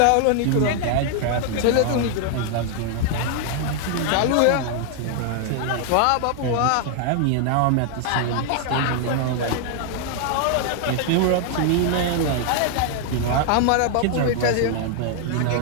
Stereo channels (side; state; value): both; different; correlation 0.00